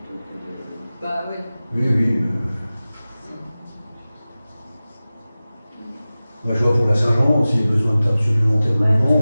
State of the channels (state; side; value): inverted; both; correlation -0.97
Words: que de. Bah oui. Oui. Moi, je vois pour la Saint-Jean, s'il y a besoin de temps supplémentaire au